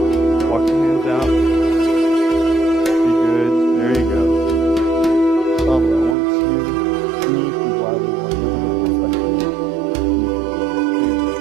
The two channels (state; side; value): drops out; left; at 6.2 s